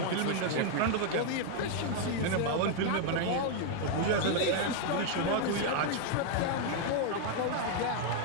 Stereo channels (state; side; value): different; both; correlation 0.01